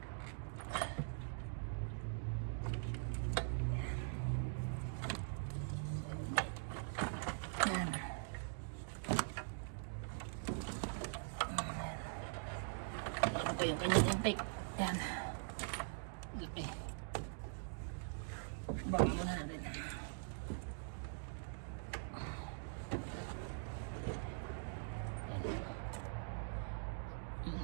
Ito yung kanyang intake. Yan. Laki. Baka muna natin.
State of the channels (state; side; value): silent; left; digital silence